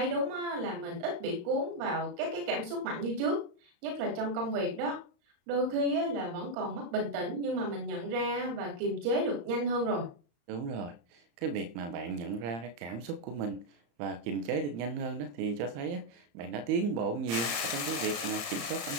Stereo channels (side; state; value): left; late; 35 ms